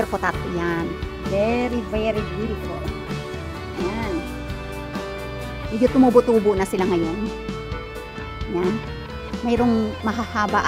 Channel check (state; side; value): identical; both; correlation 1.00